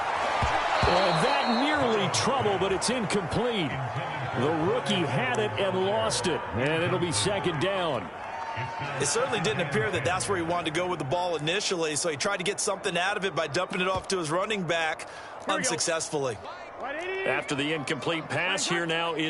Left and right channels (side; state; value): both; identical; correlation 1.00